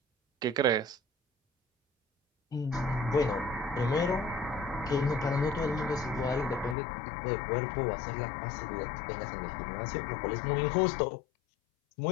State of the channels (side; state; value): right; drops out; at 6.8 s